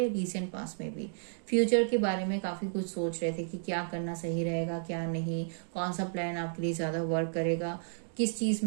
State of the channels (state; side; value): silent; left; digital silence